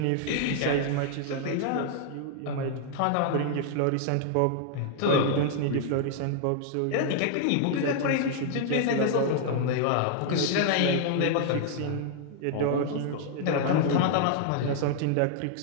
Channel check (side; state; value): both; different; correlation 0.00